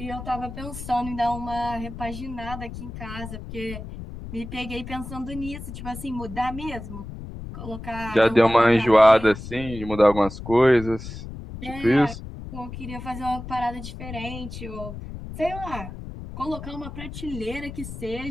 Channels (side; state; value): left; noise; rumble, 10 dB below the sound